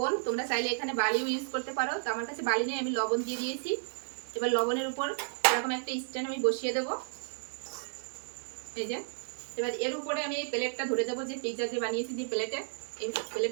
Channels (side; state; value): left; silent; digital silence